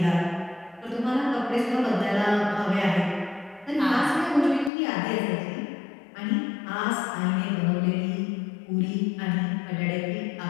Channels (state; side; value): drops out; right; at 4.7 s